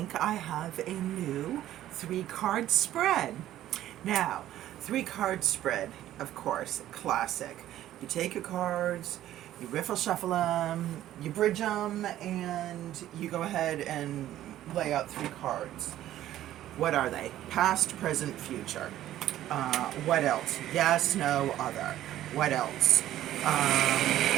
I have a new 3-card spread. Now, 3-card spread, of course, classic. You take your cards, you riffle shuffle them, you bridge them, and you go ahead and lay out 3 cards. What are they? Past, present, future. What else? Yes, no, other. What else?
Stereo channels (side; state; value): left; quieter; 13.1 dB